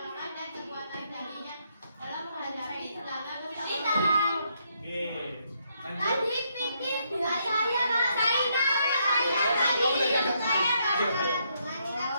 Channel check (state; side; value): inverted; both; correlation -0.75